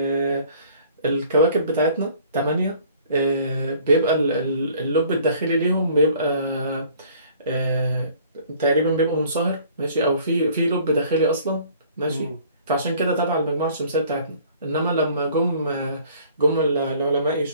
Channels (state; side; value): inverted; both; correlation -0.54